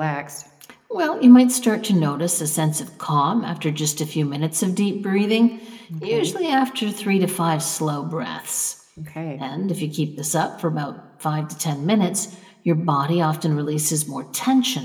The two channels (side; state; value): both; identical; correlation 1.00